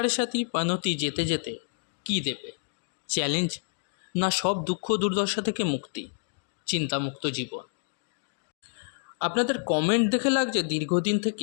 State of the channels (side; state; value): right; silent; digital silence